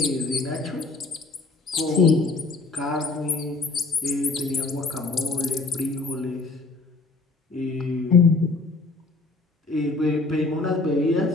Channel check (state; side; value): quieter; right; 3.6 dB